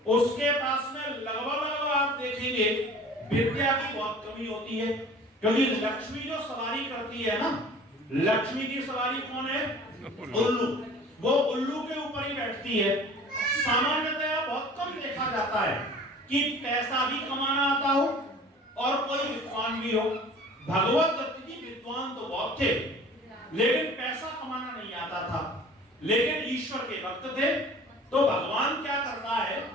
उसके पास में लगभग आप देखेंगे विद्या की बहुत कमी होती है। क्योंकि लक्ष्मी जो सवारी करती है ना, लक्ष्मी की सवारी कौन है? उल्लू। वो उल्लू के ऊपर ही बैठती है। सामान्यतः बहुत कम देखा जाता है कि पैसा भी कमाना आता हो और कोई विद्वान भी हो। भगवत दत्त जी विद्वान तो बहुत थे, लेकिन पैसा कमाना नहीं आता था। लेकिन ईश्वर के भक्त थे, तो भगवान क्या करता है,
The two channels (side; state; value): both; normal; correlation 0.45